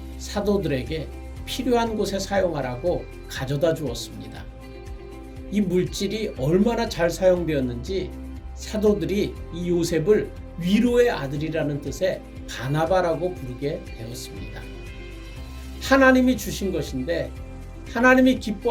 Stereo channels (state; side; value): identical; both; correlation 1.00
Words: 사도들에게 필요한 곳에 사용하라고 가져다 주었습니다. 이 물질이 얼마나 잘 사용되었는지 사도들이 이 요셉을 위로의 아들이라는 뜻의 바나바라고 부르게 되었습니다. 하나님이 주신 것인데 하나님이